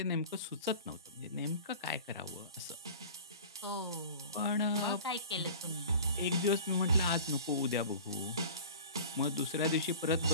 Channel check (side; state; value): both; inverted; correlation -0.40